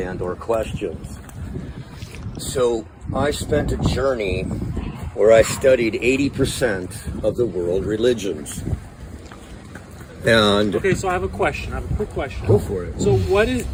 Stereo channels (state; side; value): identical; both; correlation 1.00